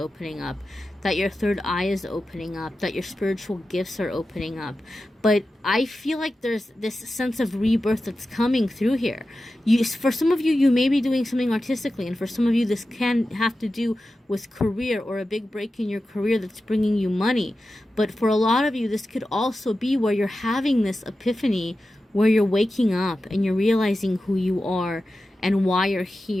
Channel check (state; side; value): normal; both; correlation 0.93